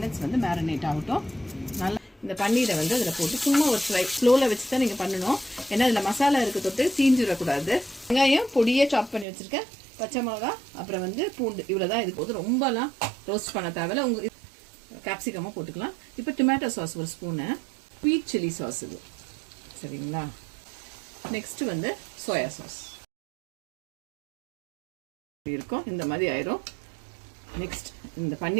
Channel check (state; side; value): drops out; left; at 9.2 s